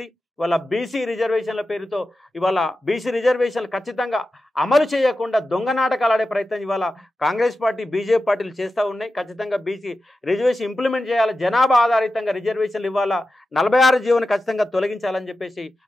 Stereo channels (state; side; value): normal; both; correlation 0.92